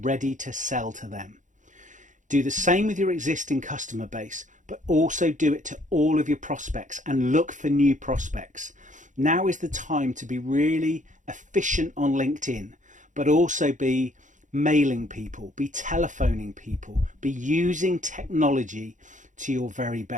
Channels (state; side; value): late; left; 0.36 ms